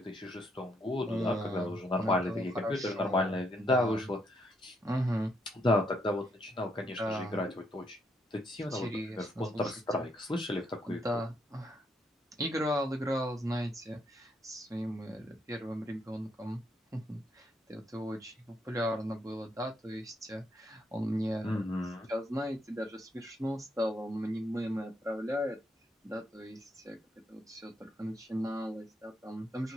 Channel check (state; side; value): normal; both; correlation 0.75